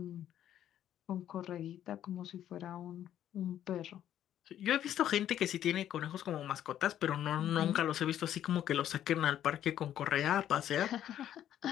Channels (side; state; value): right; quieter; 11.1 dB